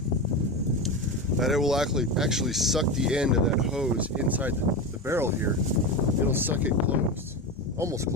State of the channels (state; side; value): normal; both; correlation 0.20